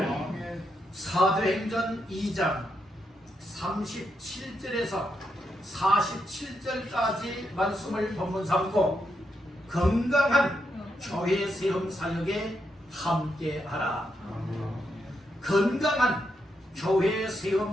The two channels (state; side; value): normal; both; correlation 0.82